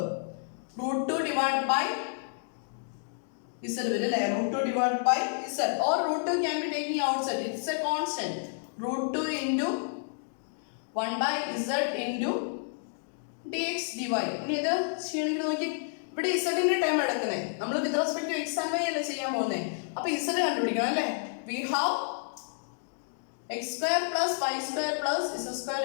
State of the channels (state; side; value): silent; right; digital silence